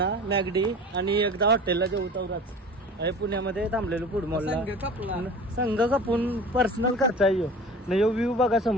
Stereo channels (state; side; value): normal; both; correlation 0.39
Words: मॅगडी आणि एकदा हॉटेलला जेवू तवराच आहे. पुण्यामध्ये थांबलेलो फूड मॉलला. संघ कापून पर्सनल खर्च आहे यो. नाही यो व्ह्यू बघा